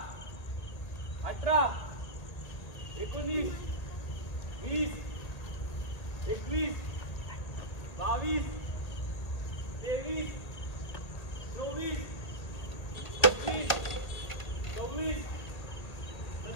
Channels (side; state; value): right; late; 1.8 ms